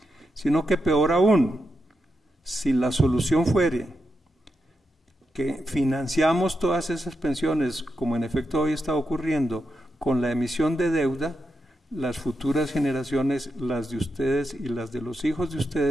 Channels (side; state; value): both; normal; correlation 0.86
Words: sino que peor aún, si la solución fuere que financiamos todas esas pensiones, como en efecto hoy está ocurriendo, con la emisión de deuda, las futuras generaciones, las de ustedes y las de los hijos de